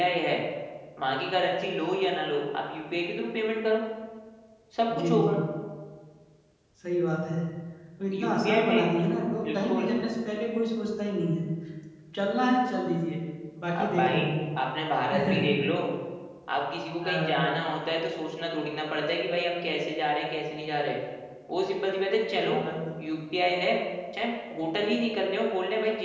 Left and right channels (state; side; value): identical; both; correlation 1.00